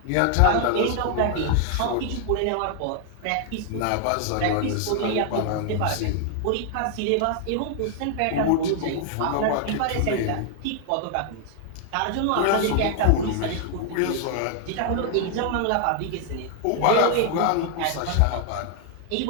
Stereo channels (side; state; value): both; different; correlation 0.00